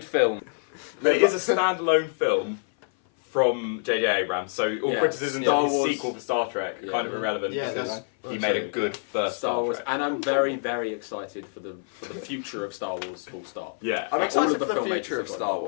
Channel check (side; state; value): right; silent; 57 dB below the other